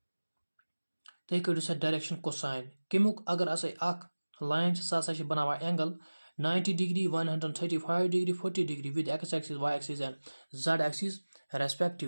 तुम कड़ो सा direction cosine कमुक अगर line सह बनावा angle 90 degree 135 degree 40 degree with x axis y axis and z axis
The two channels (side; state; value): both; inverted; correlation -1.00